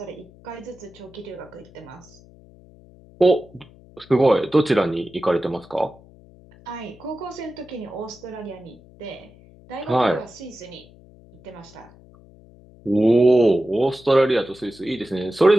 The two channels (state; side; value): noise; left; hum, 24 dB below the sound